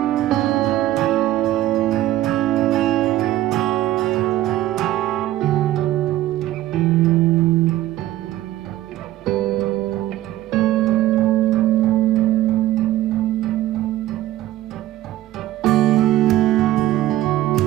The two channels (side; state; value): left; quieter; 14.6 dB